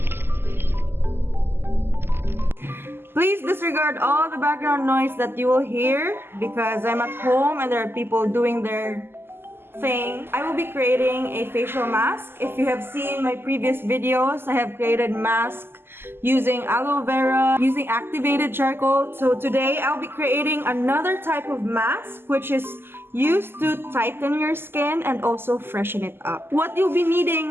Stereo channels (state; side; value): late; left; 0.11 ms